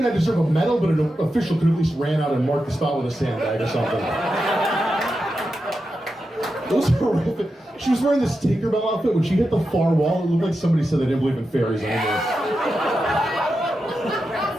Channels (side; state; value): both; normal; correlation 0.89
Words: I deserve a medal, but an official could at least ran out and mark the spot with a sandbag or something. It was horrific. She was wearing this Tinkerbell outfit. When she hit the far wall, it looked like somebody said they didn't believe in fairies anymore.